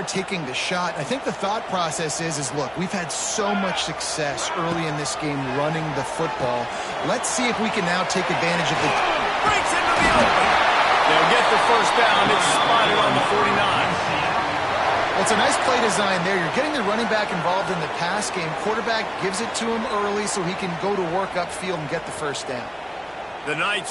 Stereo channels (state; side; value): identical; both; correlation 1.00